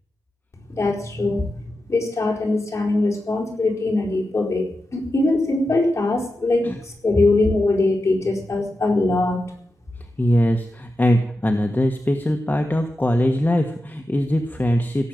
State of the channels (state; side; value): normal; both; correlation 0.90